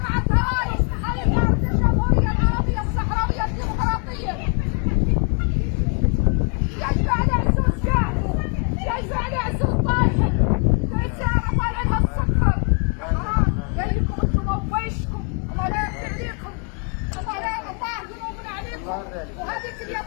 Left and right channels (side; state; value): right; quieter; 40.0 dB